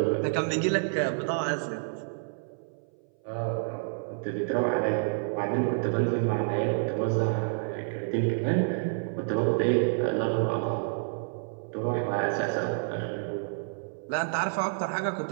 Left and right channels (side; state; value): left; silent; 58 dB below the other